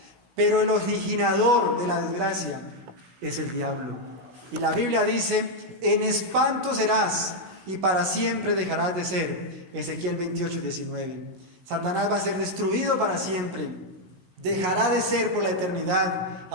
pero el originador de la desgracia es el diablo. Y la Biblia dice: en espanto serás y para siempre dejarás de ser. Ezequiel 28:19. Satanás va a ser destruido para siempre, dejará de ser por la eternidad.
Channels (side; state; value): left; late; 16 ms